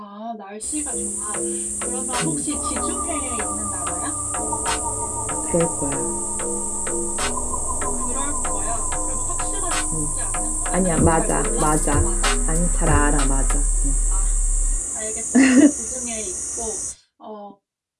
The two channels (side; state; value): both; identical; correlation 1.00